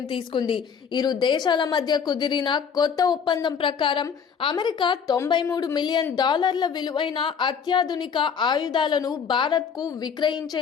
తీసుకుంది. ఇరు దేశాల మధ్య కుదిరిన కొత్త ఒప్పందం ప్రకారం అమెరికా $93 మిలియన్ విలువైన అత్యాధునిక ఆయుధాలను భారత్కు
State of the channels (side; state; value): right; quieter; 6.8 dB